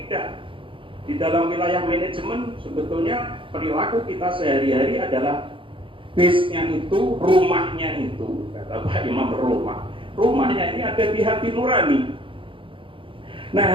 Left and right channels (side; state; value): left; late; 0.25 ms